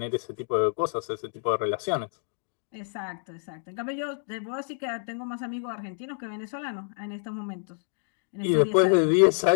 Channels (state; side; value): silent; right; digital silence